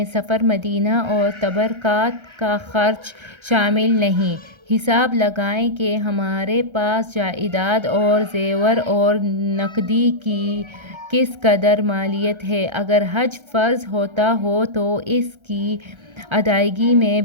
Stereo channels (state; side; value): late; left; 1.3 ms